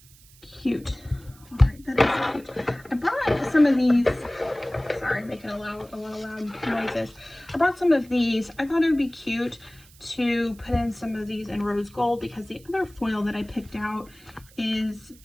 Cute. All right, that is cute. I brought some of these. Sorry, making a lot of loud noises. I brought some of these. I thought it would be cute to put in some of these in rose gold, because the other foil that I picked out is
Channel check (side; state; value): right; noise; hiss, 25 dB below the sound